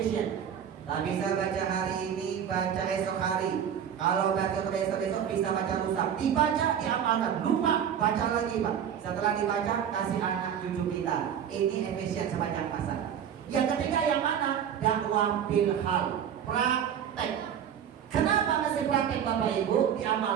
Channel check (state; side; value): quieter; left; 8.8 dB